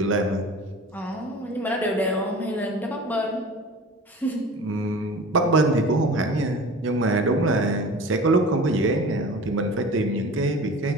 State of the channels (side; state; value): both; normal; correlation 0.39